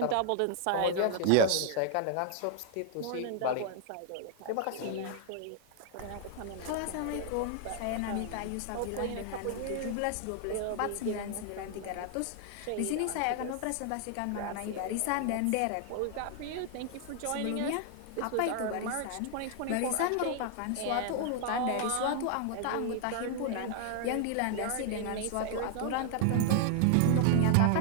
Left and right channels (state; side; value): different; both; correlation 0.00